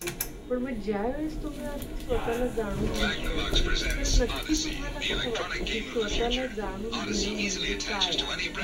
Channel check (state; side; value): identical; both; correlation 1.00